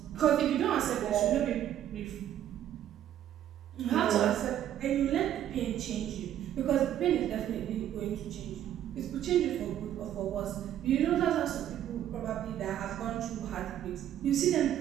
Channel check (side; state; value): left; quieter; 11.2 dB